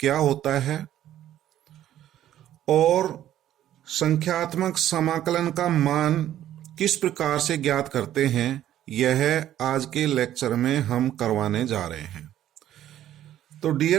होता है और संख्यात्मक समाकलन का मान किस प्रकार से ज्ञात करते हैं। यह आज के लेक्चर में हम करवाने जा रहे हैं। तो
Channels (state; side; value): quieter; left; 12.1 dB